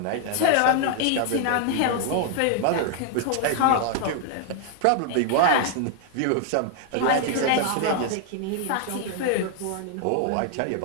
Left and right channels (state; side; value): different; both; correlation 0.00